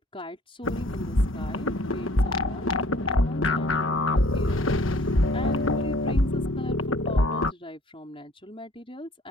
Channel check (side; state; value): both; normal; correlation 0.54